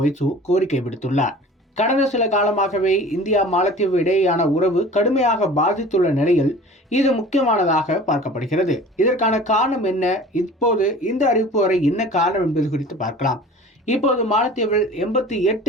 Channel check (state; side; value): normal; both; correlation 0.43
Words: மொய்சு கோரிக்கை விடுத்துள்ளார். கடந்த சில காலமாகவே இந்தியா மாலத்தீவு இடையேயான உறவு கடுமையாக பாதித்துள்ள நிலையில் இது முக்கியமானதாக பார்க்கப்படுகிறது. இதற்கான காரணம் என்ன, இப்போது இந்த அறிவிப்பு வரை என்ன காரணம் என்பது குறித்து பார்க்கலாம். இப்போது மாலத்தீவில்